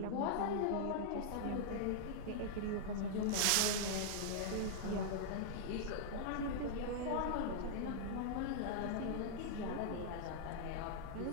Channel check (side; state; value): both; different; correlation -0.01